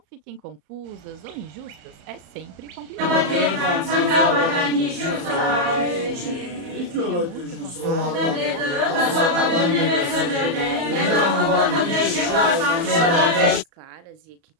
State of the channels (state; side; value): late; left; 34 ms